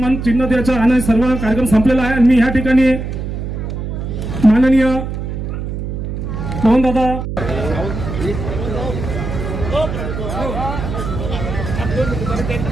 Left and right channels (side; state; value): right; noise; hum, 5 dB below the sound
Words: चिन्ह द्यायचा आणि सर्व कार्यक्रम संपलेला आहे. आणि मी ह्या ठिकाणी माननीय पवनदादा